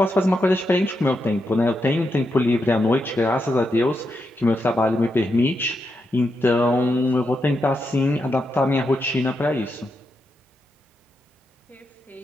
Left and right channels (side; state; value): both; normal; correlation 0.84